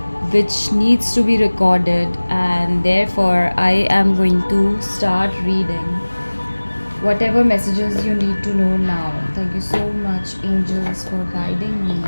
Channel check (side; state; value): both; inverted; correlation -1.00